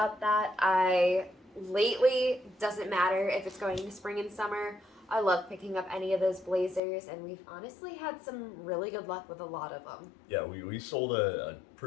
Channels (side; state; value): right; drops out; at 6.8 s